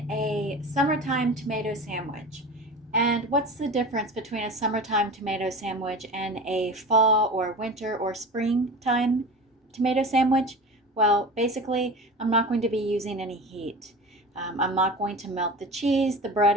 a summertime tomato sandwich. And what's the difference between a summertime tomato sandwich and a fall or winter or springtime tomato sandwich? Well, basically, I'm not going to be using any heat. I'm not going to melt the cheese. The bread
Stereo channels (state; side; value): normal; both; correlation 0.33